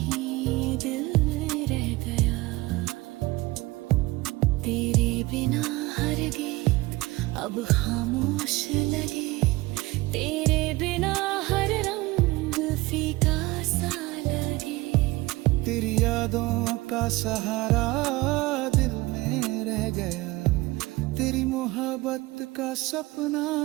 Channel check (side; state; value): left; quieter; 20.7 dB